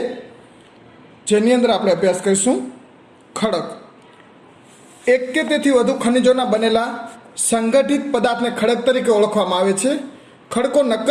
જેની અંદર આપણે અભ્યાસ કરીશું ખડક. એક કે તેથી વધુ ખનિજોના બનેલા સંગઠિત પદાર્થને ખડક તરીકે ઓળખવામાં આવે છે. ખડકો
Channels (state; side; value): identical; both; correlation 1.00